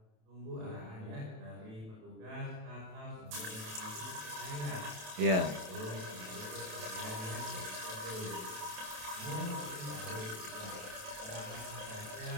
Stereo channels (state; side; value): late; left; 27 ms